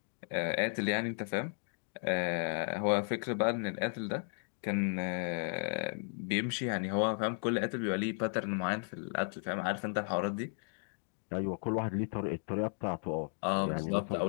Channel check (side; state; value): right; silent; 55 dB below the other